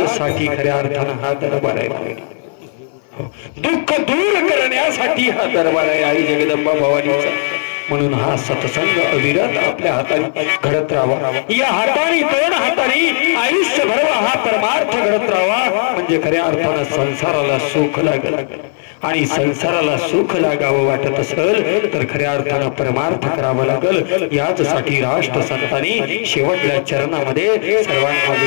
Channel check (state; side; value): silent; right; 56 dB below the other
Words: साठी खऱ्या अर्थानं हा दरबार आहे. दुःख दूर करण्यासाठी हा दरबार आहे आई जगदंबा भवानीचा. म्हणून हा सत्संग अविरत आपल्या हाताने घडत राहावा. या हाताने दोन हाताने आयुष्यभर हा परमार्थ घडत राहावा. म्हणजे खऱ्या अर्थानं संसाराला सुख लागेल. आणि संसाराला सुख लागावं वाटत असेल तर खऱ्या अर्थानं परमार्थ करावं लागेल. याचसाठी राष्ट्र संतांनी शेवटल्या चरणामध्ये सर्वांना